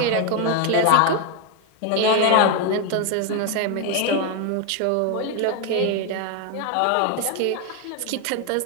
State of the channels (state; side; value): different; both; correlation 0.01